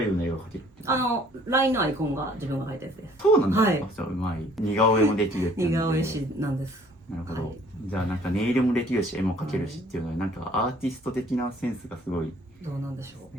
いような絵が描けるっていう。LINE のアイコンが自分が描いたやつです。そうなんだ。はいじゃあうまい。似顔絵もできるっていう似ので顔絵師なんです。なるほど、はいじゃあなんかネイルもできるし絵も描けるしっていうので、なんかアーティスト的なセンスがすごい。どうなんでしょう。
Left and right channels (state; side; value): normal; both; correlation 0.57